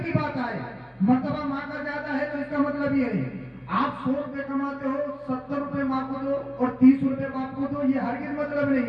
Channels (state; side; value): identical; both; correlation 1.00